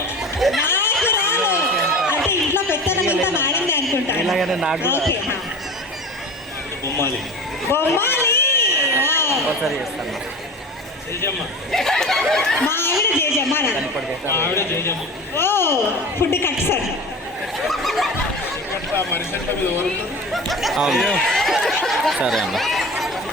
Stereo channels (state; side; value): normal; both; correlation 0.33